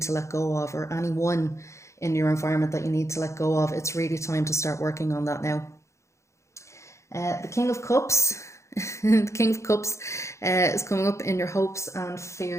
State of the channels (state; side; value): late; right; 0.14 ms